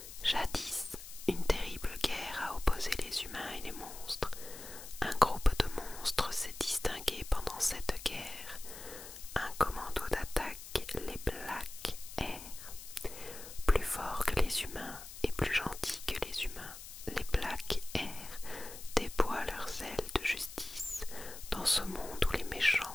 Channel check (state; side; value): noise; left; hiss, 13 dB below the sound